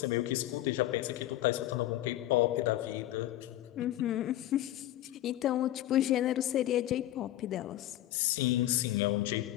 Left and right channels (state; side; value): quieter; right; 14.3 dB